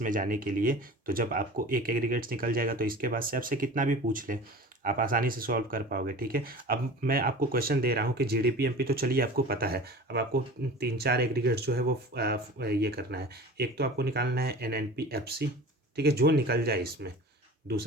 में जाने के लिए। तो जब आपको एक एग्रीगेट्स निकल जाएगा तो इसके बाद से आपसे कितना भी पूछ ले आप आसानी से सॉल्व कर पाओगे। ठीक है, अब मैं आपको क्वेश्चन दे रहा हूँ कि GDP-MP तो चलिए आपको पता है, अब आपको 3-4 एग्रीगेट्स जो है वो ये करना है। एक तो आपको निकालना है NNP-FC, ठीक है, जो निकल जाए इसमें।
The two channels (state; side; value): normal; both; correlation 0.38